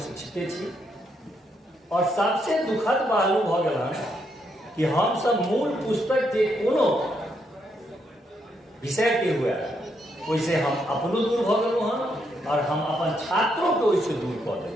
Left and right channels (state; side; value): normal; both; correlation 0.77